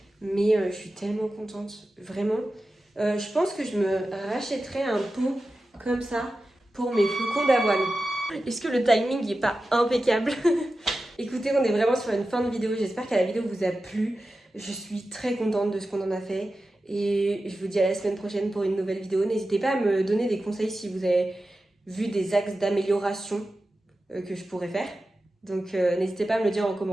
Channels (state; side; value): normal; both; correlation 0.93